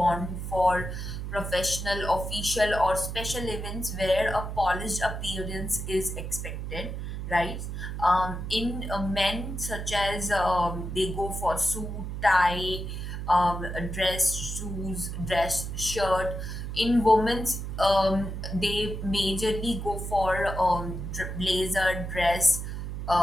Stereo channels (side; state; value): right; noise; hum, 5 dB below the sound